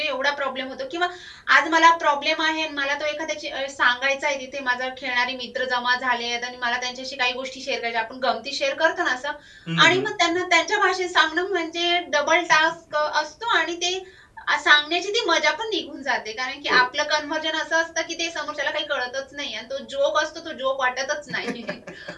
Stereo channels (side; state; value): both; identical; correlation 1.00